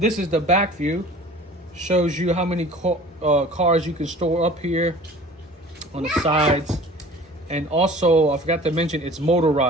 this is the back view. Shows you how many cars you can store up here on the sides. And also, I forgot to mention, it's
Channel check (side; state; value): both; normal; correlation 0.45